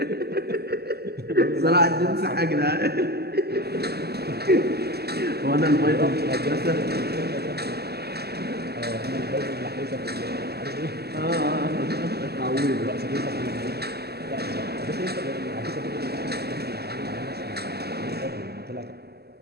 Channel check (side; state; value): left; late; 0.46 ms